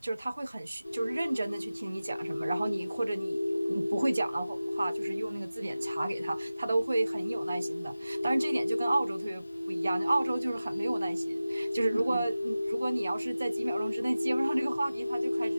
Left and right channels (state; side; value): inverted; both; correlation -0.96